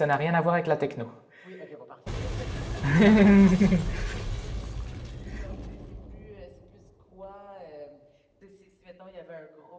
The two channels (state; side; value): identical; both; correlation 1.00